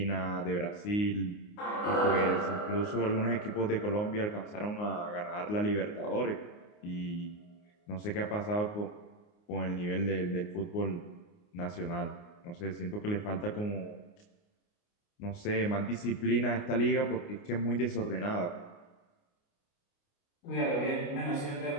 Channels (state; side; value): late; right; 29 ms